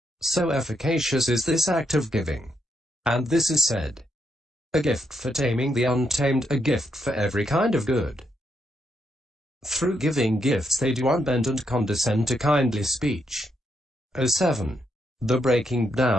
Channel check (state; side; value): normal; both; correlation 0.79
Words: So efficacious is this act of giving. And this is said, a gift for taming the untamed, a gift for every kind of good. Through giving gifts they do unbend and condescend to kindly speech. 07. The breaking